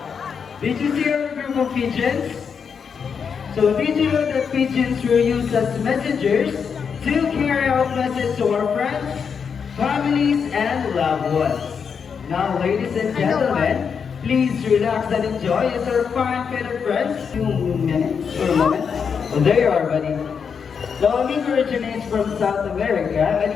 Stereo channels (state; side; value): quieter; right; 6.5 dB